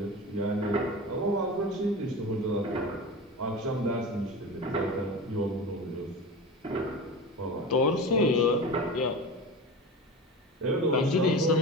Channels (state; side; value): normal; both; correlation 0.29